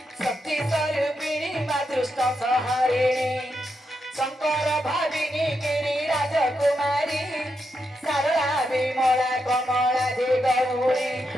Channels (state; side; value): normal; both; correlation 0.84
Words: शक्ति स्वरूपिणी माँ दुष्ट संहारिणी शंकर भाविनी गिरी राजकुमारी सरला विमला कमला दे गौरी